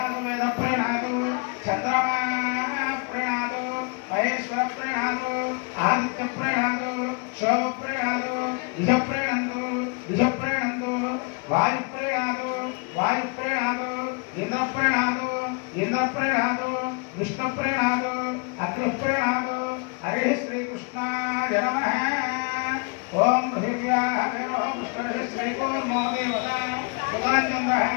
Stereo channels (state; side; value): quieter; right; 32.8 dB